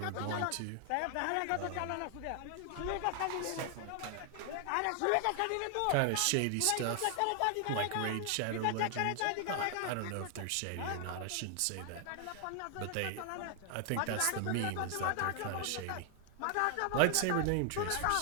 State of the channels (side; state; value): both; different; correlation 0.00